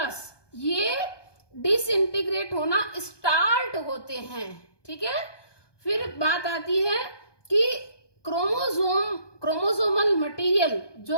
ये डिसइंटीग्रेट होना स्टार्ट होते हैं। ठीक है, फिर बात आती है कि क्रोमोसोमल मटेरियल,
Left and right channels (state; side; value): late; right; 1.2 ms